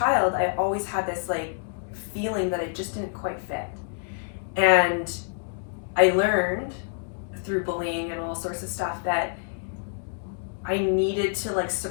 I always had this like feeling that I just didn't quite fit. And I learned through bullying and all sorts of stuff that I needed to like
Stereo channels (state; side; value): silent; right; digital silence